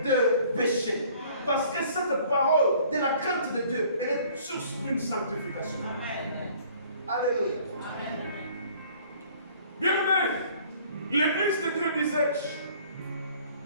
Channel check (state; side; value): inverted; both; correlation -0.55